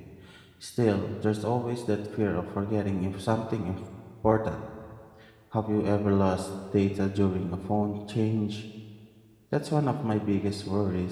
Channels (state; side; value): identical; both; correlation 1.00